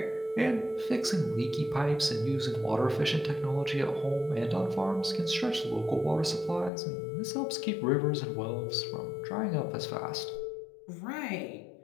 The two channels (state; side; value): drops out; right; at 6.7 s